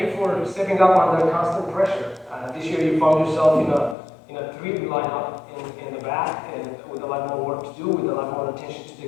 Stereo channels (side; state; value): right; drops out; at 4.0 s